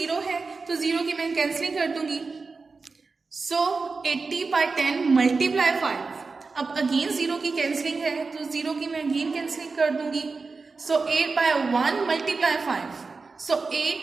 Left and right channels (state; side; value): quieter; left; 4.2 dB